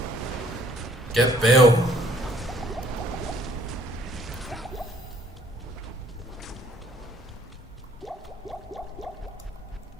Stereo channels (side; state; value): both; normal; correlation 0.61